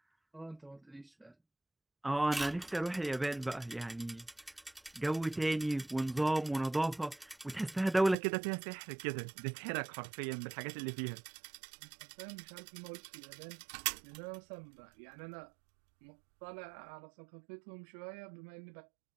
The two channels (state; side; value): drops out; left; at 8.2 s